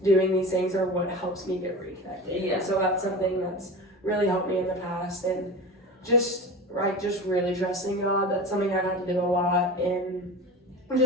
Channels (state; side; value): normal; both; correlation 0.31